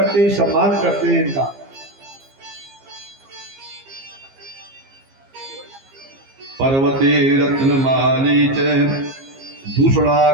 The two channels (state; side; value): late; left; 15 ms